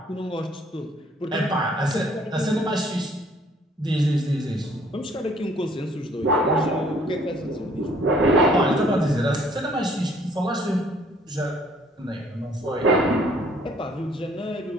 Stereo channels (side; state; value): both; normal; correlation 0.60